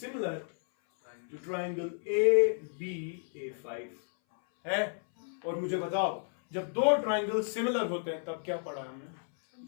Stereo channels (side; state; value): right; silent; 56 dB below the other